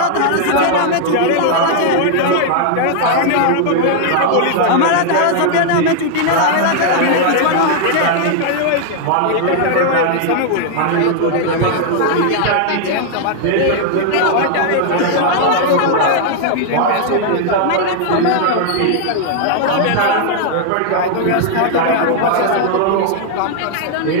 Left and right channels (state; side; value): different; both; correlation 0.00